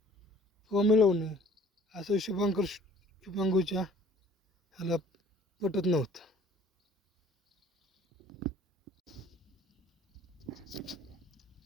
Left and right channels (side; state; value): both; normal; correlation 0.53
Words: किंवा मिळवणे असं शुभांगूच्या ह्याला पटत नव्हतं.